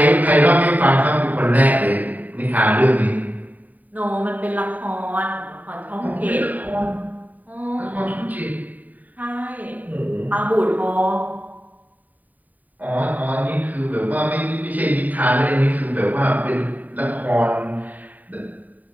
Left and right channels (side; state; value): left; late; 0.080 ms